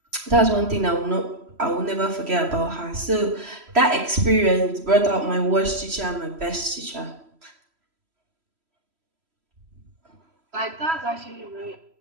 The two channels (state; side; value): late; left; 3.0 ms